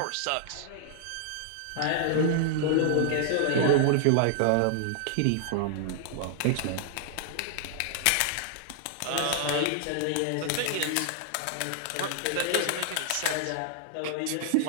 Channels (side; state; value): both; different; correlation -0.01